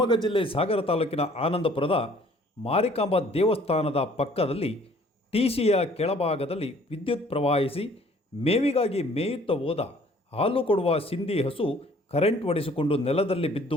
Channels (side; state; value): both; normal; correlation 0.56